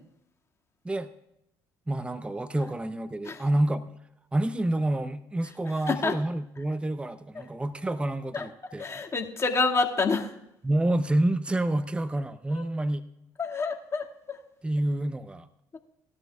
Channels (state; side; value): normal; both; correlation 0.85